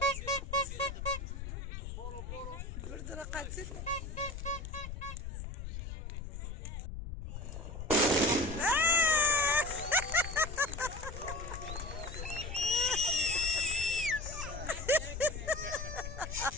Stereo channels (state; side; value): noise; left; rumble, 7 dB below the sound